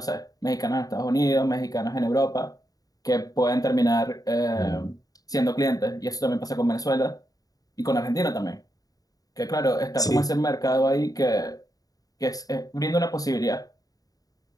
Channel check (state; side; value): late; right; 0.18 ms